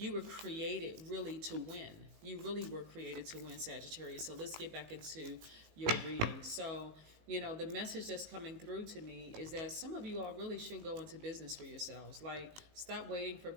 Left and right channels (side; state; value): left; late; 18 ms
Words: were created really to win. You really were created to win, Sagittarius. So let's get back into your reading. So, the message that's coming through to me is that some of you all really should go into business for yourselves. Like, stop waiting for